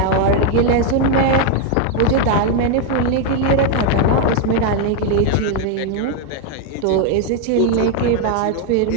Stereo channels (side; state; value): both; different; correlation 0.01